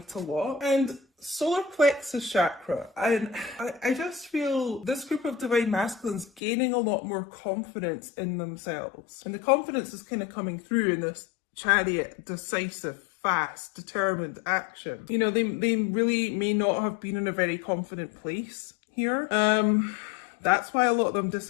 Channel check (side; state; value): right; drops out; at 6.4 s